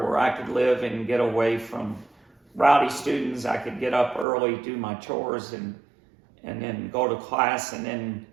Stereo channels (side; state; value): left; drops out; at 4.2 s